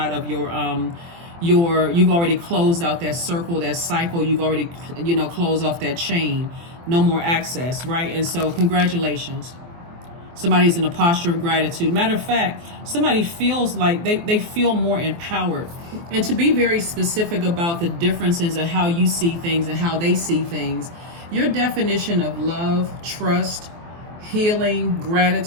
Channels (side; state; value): left; late; 24 ms